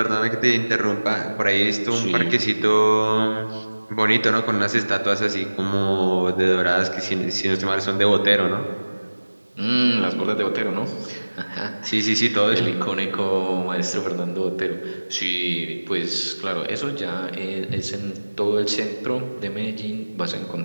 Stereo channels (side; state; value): both; inverted; correlation -1.00